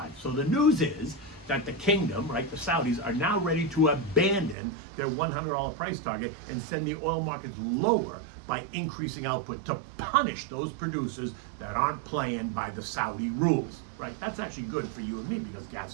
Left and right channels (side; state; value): left; drops out; at 4.5 s